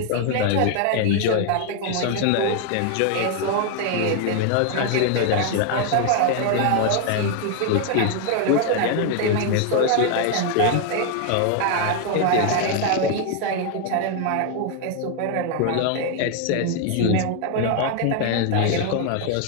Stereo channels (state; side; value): different; both; correlation 0.00